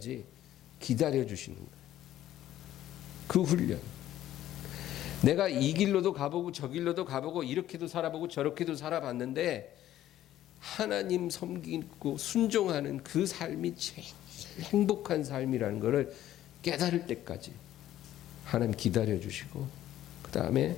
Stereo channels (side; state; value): right; quieter; 12.9 dB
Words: 기다려 주시는 거예요. 그 훈련. 내가 이 길로도 가보고 저 길로도 가보고 이렇게도 살아보고 저렇게도 살아봤는데 하나님 섬기고 순종하는 그 삶이 제일 행복한 삶이라는 것을 깨달을 때까지 하나님 기다려 주시고 그 다음에